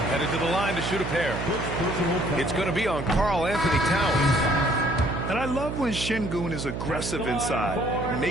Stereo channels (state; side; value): noise; right; hum, 5 dB below the sound